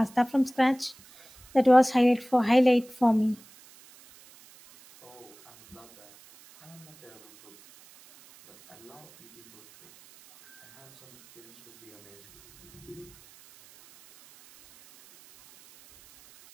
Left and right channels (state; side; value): noise; right; hiss, 25 dB below the sound